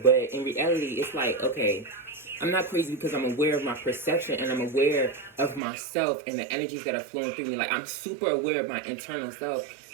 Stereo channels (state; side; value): drops out; left; at 5.6 s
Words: in reality, it's like, okay, I'm not crazy because I'm aware of my perception and I'm aware of myself and the energies that are flowing through me. Like, I'm super aware of my internal self.